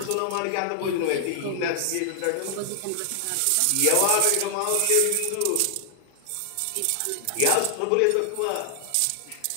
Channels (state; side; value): different; both; correlation 0.00